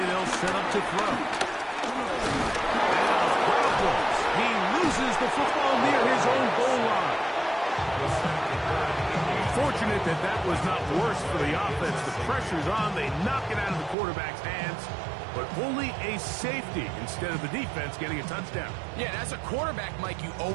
they'll set up to throw. He loses the football near his own goal line. Fortunate that that was not worse for the offense. The pressure's on. They knock it out of the quarterback's hands, but only a safety instead of the defense getting a touchdown. Yeah, and as a quarterback, Mike, you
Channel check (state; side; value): drops out; left; at 14.0 s